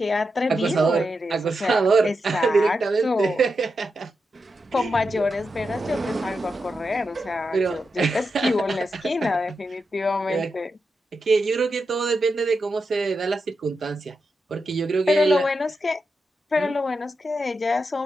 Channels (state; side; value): normal; both; correlation 0.87